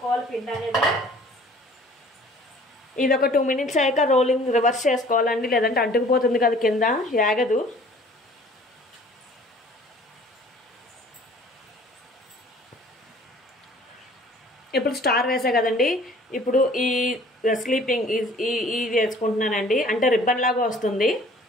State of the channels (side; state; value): both; normal; correlation 0.52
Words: పిండి అనేది. ఇది ఒక 2 minutes అయ్యాక రోలింగ్ రివర్స్ చేసుకోవాలండి, లేదంటే అంటుకుపోతుంది కదా కింద, యాగదు. ఇప్పుడు స్టార్ వేసా కదండి, ఇప్పుడు ఈ స్లీపింగ్ ఈ వేసుకుంటున్నానండి. అంటే రిబ్బన్ లాగా వస్తుంది.